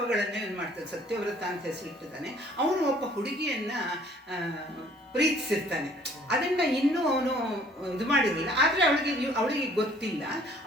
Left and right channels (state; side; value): normal; both; correlation 0.57